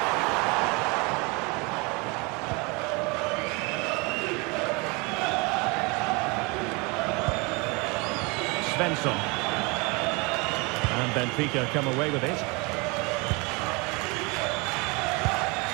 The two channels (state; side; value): quieter; left; 28.3 dB